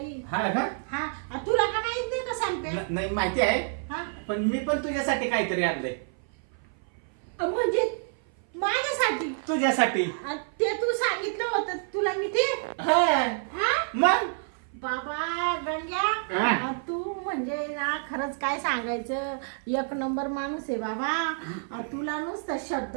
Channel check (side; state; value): left; silent; 56 dB below the other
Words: हा का? हा तुला का माहित नाही का सांगते? नाही माहिती आहे, हा पण मी पण तुझ्यासाठी काहीतरी आणलंय. म्हणजे माझ्यासाठी? तुझ्यासाठी. ते तू सांगितलं होतं तुला मी ते. हा हा मग बाबा गंग्या, हा. तू म्हणजे म्हणजे ना खरंच काय सांगायचं, एक नंबर माणूस आहे बाबा. तुला नुसतं शब्द